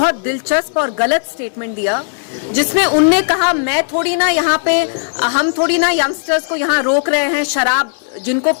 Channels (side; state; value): right; silent; digital silence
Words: दिलचस्प और गलत स्टेटमेंट दिया जिसमें उनने कहा हम थोड़ी ना यंगस्टर्स को यहाँ रोक रहे हैं, शराब जिनको